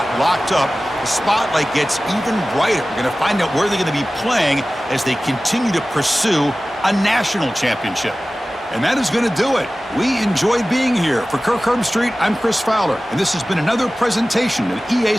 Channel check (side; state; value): both; normal; correlation 0.97